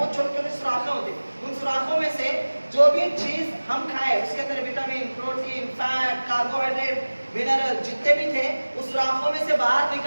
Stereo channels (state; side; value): inverted; both; correlation -1.00